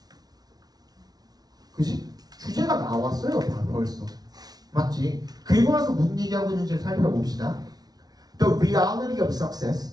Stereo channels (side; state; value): left; late; 0.19 ms